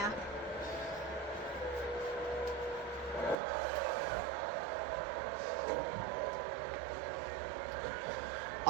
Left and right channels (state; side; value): drops out; left; at 3.4 s